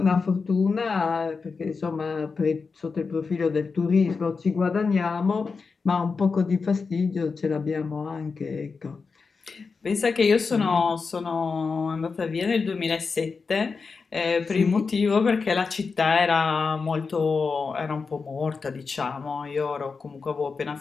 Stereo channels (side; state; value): right; quieter; 4.8 dB